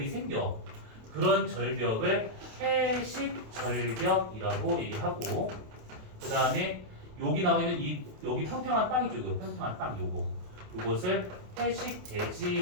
생겨. 그런 절벽을 해식 절벽이라고 얘기하고, 그 다음에 여기 나와 있는 여기 평평한 땅이죠. 이거 평평한 땅 요것을 해식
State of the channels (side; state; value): left; late; 28 ms